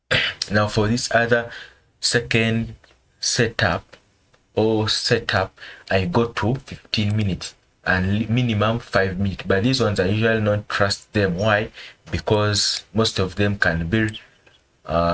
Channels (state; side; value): identical; both; correlation 1.00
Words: now for this other second setup I go to 15 minutes and minimum 5 minutes. But these ones I usually not trust them. Why? Because most of them can be